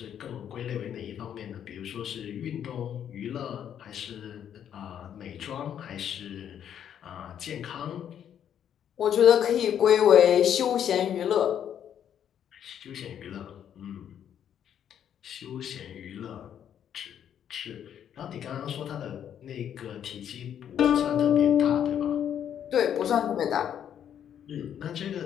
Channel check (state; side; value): quieter; right; 9.4 dB